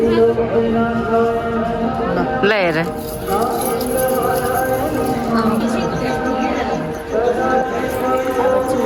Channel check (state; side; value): identical; both; correlation 1.00